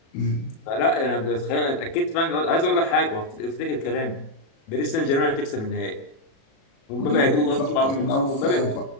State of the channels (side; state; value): right; late; 37 ms